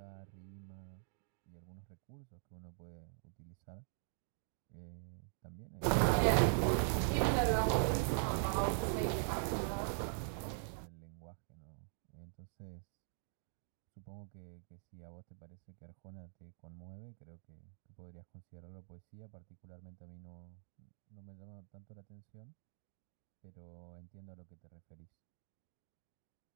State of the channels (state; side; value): silent; left; digital silence